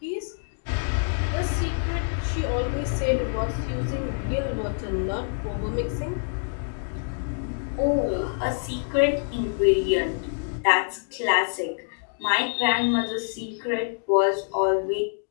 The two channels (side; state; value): right; silent; digital silence